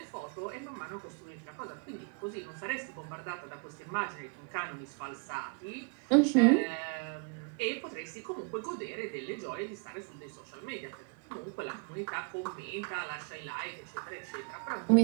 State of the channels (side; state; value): left; quieter; 36.1 dB